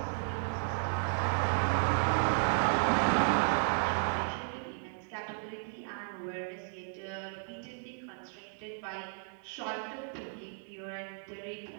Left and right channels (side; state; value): left; silent; 55 dB below the other